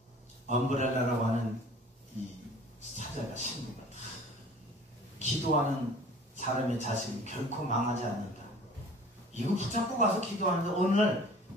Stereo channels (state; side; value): normal; both; correlation 0.47